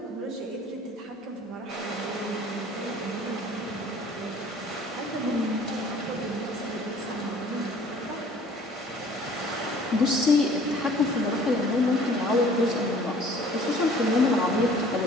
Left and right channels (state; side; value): normal; both; correlation 0.52